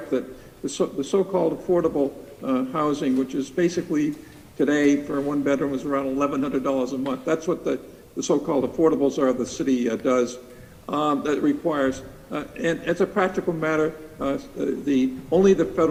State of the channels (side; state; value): both; identical; correlation 1.00